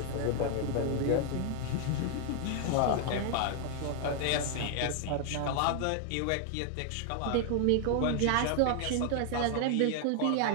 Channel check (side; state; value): both; different; correlation 0.00